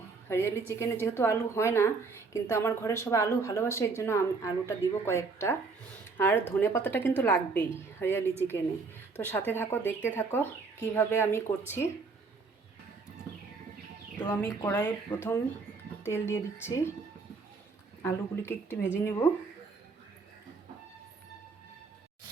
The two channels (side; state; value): left; quieter; 4.4 dB